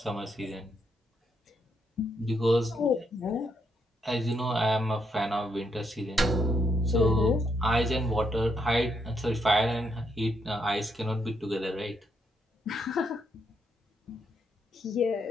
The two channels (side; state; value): both; normal; correlation 0.77